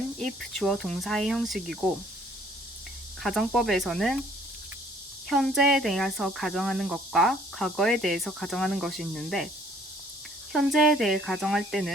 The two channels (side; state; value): both; normal; correlation 0.60